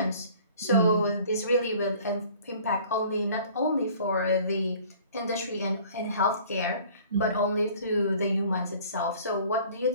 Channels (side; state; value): both; inverted; correlation -0.50